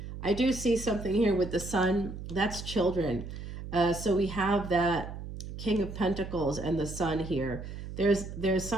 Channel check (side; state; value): right; noise; hum, 9 dB below the sound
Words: I do see something here with the sun. That's children. So we have that King of Pentacles and the sun here. There's